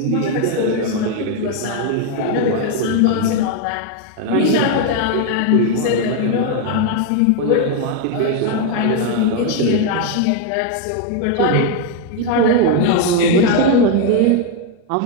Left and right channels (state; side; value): different; both; correlation 0.01